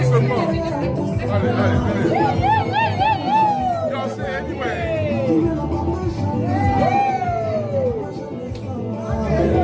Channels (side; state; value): both; identical; correlation 1.00